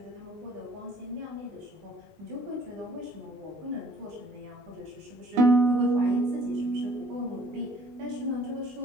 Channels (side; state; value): left; late; 19 ms